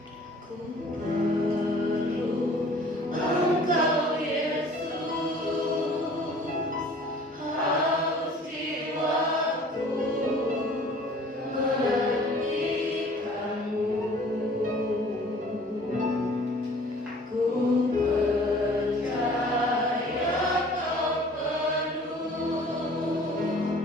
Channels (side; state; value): both; normal; correlation 0.50